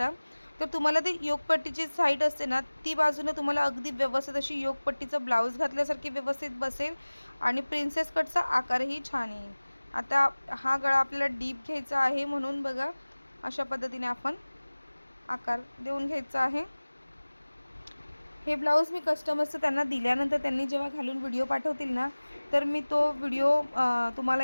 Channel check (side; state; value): both; inverted; correlation -1.00